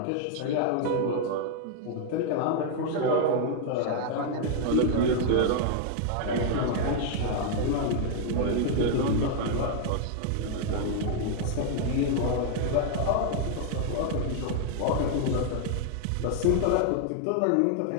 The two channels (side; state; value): both; different; correlation 0.00